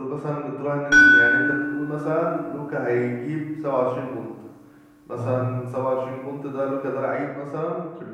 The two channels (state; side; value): identical; both; correlation 1.00